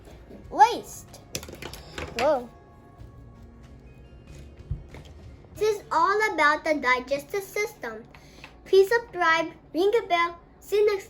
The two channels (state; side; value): identical; both; correlation 1.00